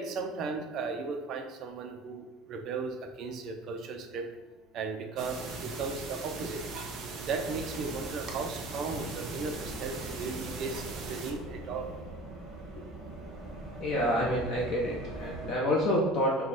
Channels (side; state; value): both; normal; correlation 0.40